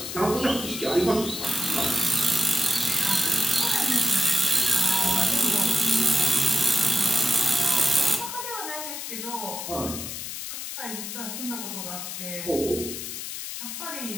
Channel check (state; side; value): noise; left; hiss, 7 dB below the sound